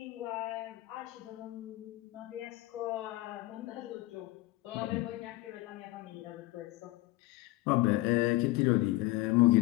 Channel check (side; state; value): right; quieter; 19.1 dB